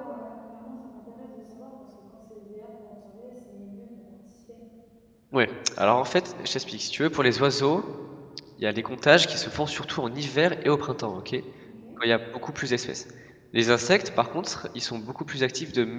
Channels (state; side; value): identical; both; correlation 1.00